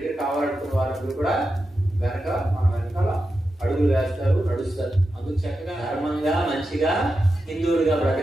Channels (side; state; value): both; normal; correlation 0.90